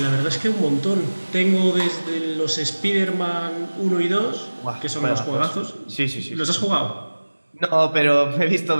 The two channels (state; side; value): inverted; both; correlation -1.00